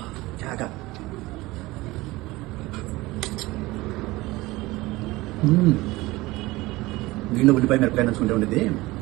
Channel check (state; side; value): quieter; left; 20.1 dB